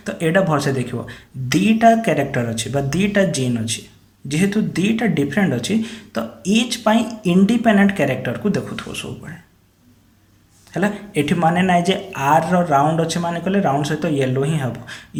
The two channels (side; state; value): both; identical; correlation 1.00